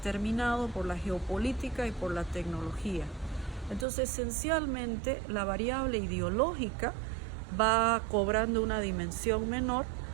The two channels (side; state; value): left; drops out; at 3.9 s